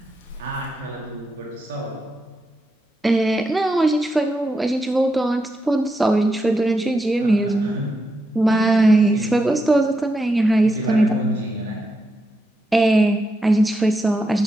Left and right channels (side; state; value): both; normal; correlation 0.85